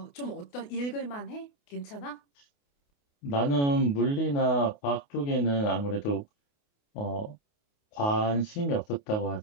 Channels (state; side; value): late; right; 28 ms